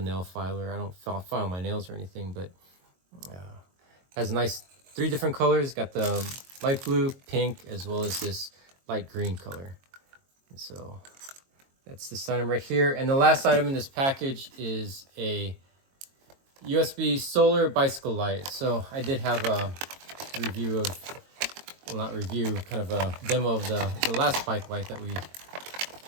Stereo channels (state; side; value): late; left; 22 ms